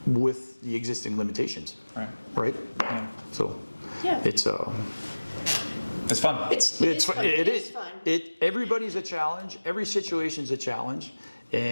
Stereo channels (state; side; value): inverted; both; correlation -1.00